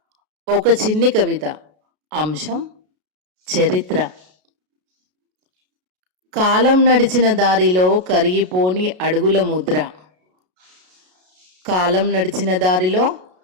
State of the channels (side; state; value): left; late; 33 ms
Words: ఒక చిన్ని కవిత. అంశం చరిత్ర. కాలం నడిచిన దారిలో కరిగిపోని అడుగుల ముద్ర. కాలం నడిచిన దారిలో